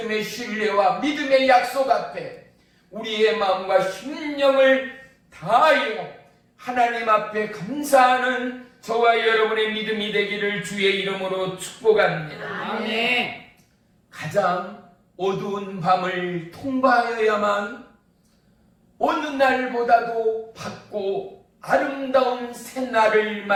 신뢰와 믿음의 약속 앞에 우리의 마음과 심령을 다하여 하나님 앞에 감사하는 저와 여러분의 믿음이 되기를 주의 이름으로 축복합니다. 가장 어두운 밤을 통과하여야만 어느 날보다도 밝고 아름다운 새날을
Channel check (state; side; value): identical; both; correlation 1.00